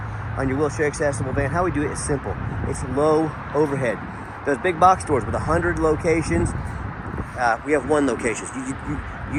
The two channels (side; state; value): both; identical; correlation 1.00